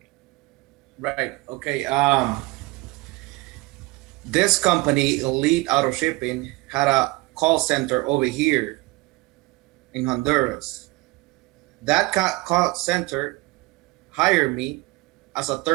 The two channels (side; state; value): left; quieter; 22.4 dB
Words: Right. Okay. This company, Elite Auto Shipping, had a call center over here in Honduras. That call center hired me as a